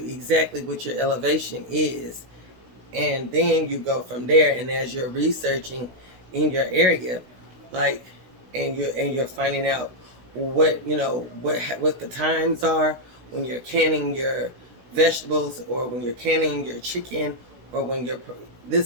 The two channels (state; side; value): late; left; 16 ms